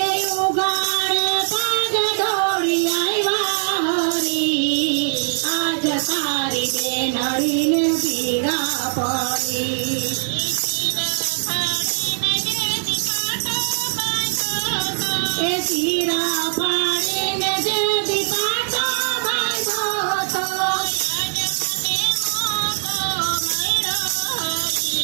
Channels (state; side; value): silent; left; digital silence